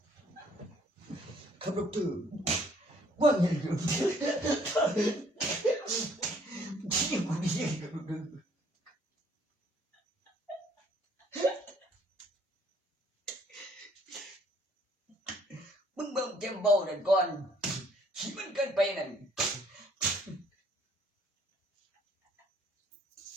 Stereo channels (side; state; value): both; normal; correlation 0.62